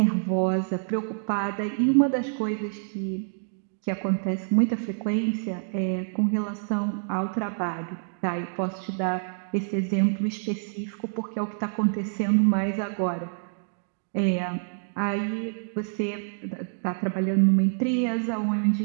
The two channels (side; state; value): left; silent; digital silence